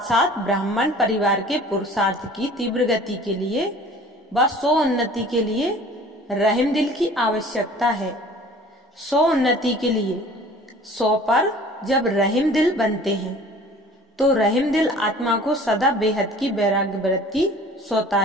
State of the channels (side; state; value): both; normal; correlation 0.47